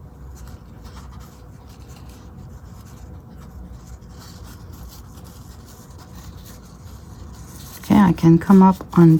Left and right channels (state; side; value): identical; both; correlation 1.00